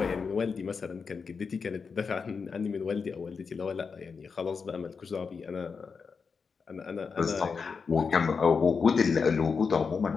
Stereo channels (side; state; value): right; quieter; 5.4 dB